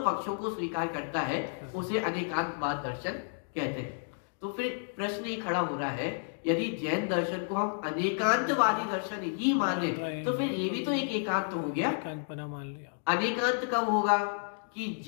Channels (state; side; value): silent; right; digital silence